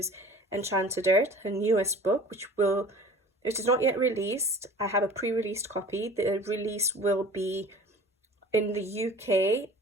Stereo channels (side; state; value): both; normal; correlation 0.43